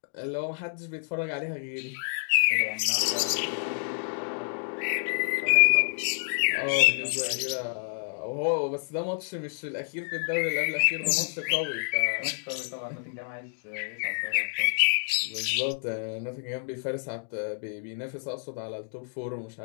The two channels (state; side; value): silent; right; digital silence